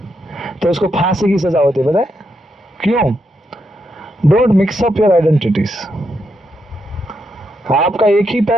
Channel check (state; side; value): normal; both; correlation 0.81